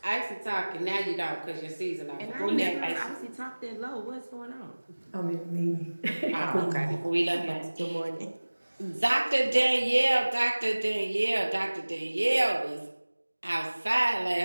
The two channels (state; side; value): inverted; both; correlation -1.00